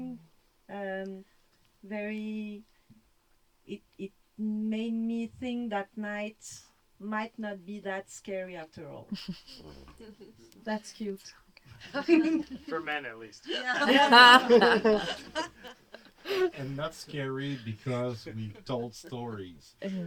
very. It made me think that night might not be that scary after all. that's cute. For men, at least. Yeah. And not scary because we told stories.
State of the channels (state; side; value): identical; both; correlation 1.00